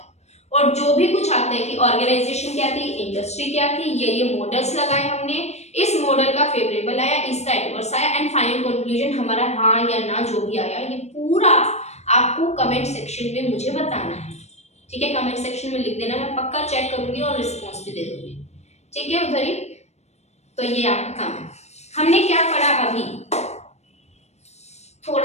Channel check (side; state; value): right; late; 0.32 ms